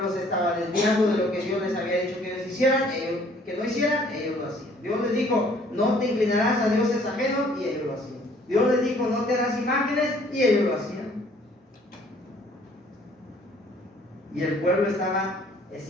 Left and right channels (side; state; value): both; normal; correlation 0.59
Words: se estaba desviando de lo que Dios les había dicho que ellos hicieran, que no hicieran, ellos lo hacían. Dios les dijo: no te inclinarás a dioses ajenos, y ellos lo hacían. Dios les dijo: no te harás imágenes, y ellos lo hacían. Y el pueblo estaba